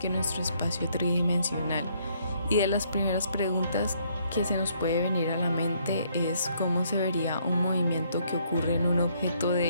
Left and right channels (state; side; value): inverted; both; correlation -0.68